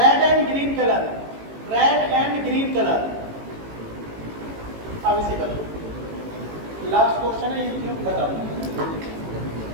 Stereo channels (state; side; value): late; left; 18 ms